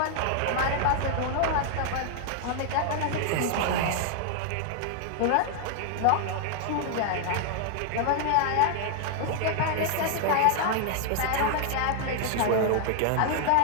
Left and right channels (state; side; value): different; both; correlation 0.00